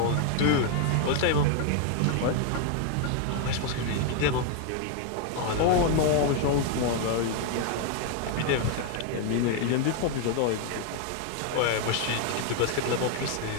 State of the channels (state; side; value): different; both; correlation 0.00